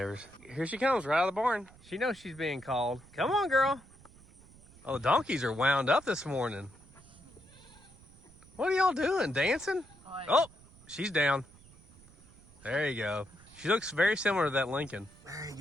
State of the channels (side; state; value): right; noise; rumble, 24 dB below the sound